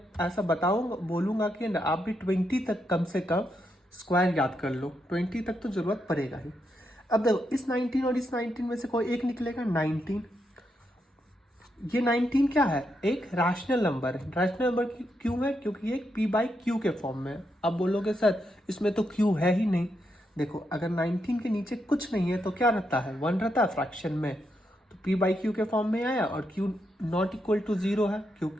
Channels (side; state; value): both; normal; correlation 0.82